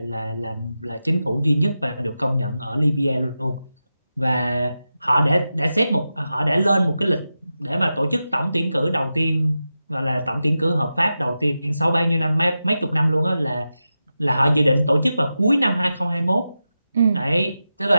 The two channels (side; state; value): both; inverted; correlation -0.92